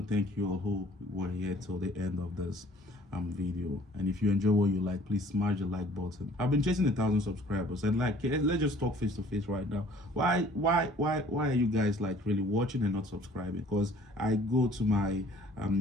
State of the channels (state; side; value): normal; both; correlation 0.54